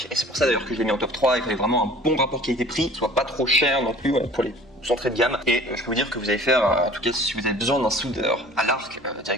Et c'est pour ça d'ailleurs que je l'ai mis en top 3, il fallait vraiment un bon rapport qualité-prix, soit pas trop cher non plus pour les entrée de gamme. Et je peux vous dire que vous allez faire, en tout cas si vous avez besoin d'un soudeur à l'arc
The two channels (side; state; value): both; normal; correlation 0.47